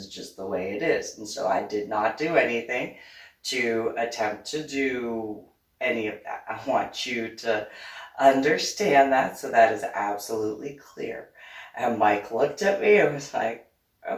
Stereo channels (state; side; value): identical; both; correlation 1.00